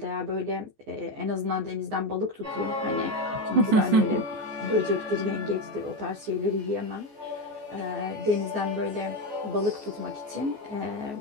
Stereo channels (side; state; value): left; late; 14 ms